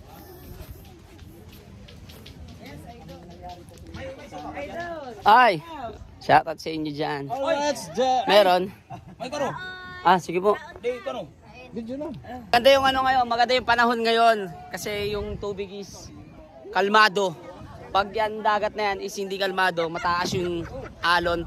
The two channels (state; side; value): identical; both; correlation 1.00